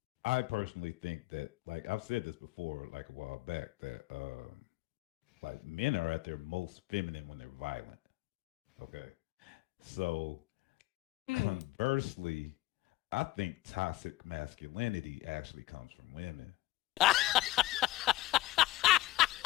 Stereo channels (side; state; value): right; quieter; 17.8 dB